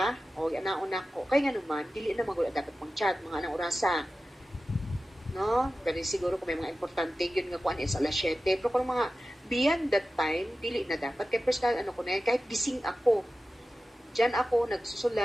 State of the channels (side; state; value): both; normal; correlation 0.94